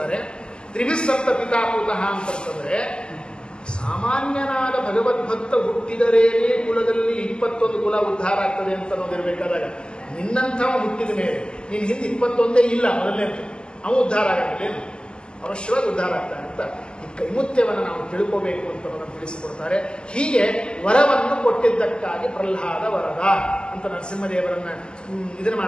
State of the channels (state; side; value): late; right; 0.048 ms